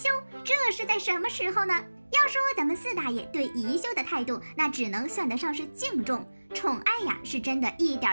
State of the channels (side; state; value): both; inverted; correlation -1.00